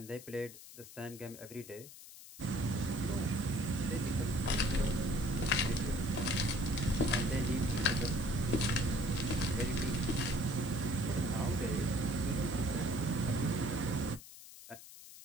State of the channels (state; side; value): noise; left; hiss, 16 dB below the sound